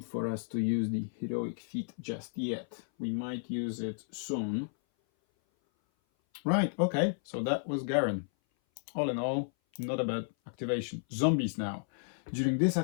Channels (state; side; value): silent; right; 56 dB below the other